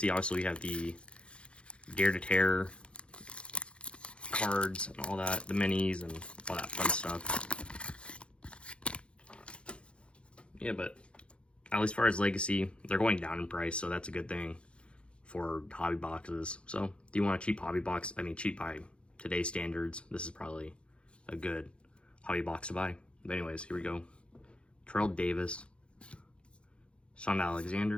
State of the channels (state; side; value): late; right; 0.058 ms